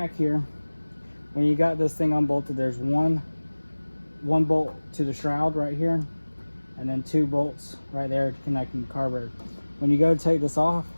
here, when you got this thing unbolted, there's one bolt to the shroud right here, and then 2 bolts right there connecting the carburetor. When you go to take this off,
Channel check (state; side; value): inverted; both; correlation -1.00